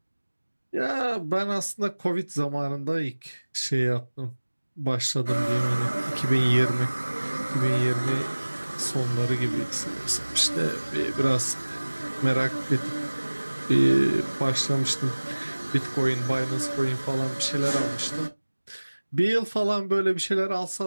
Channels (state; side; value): inverted; both; correlation -1.00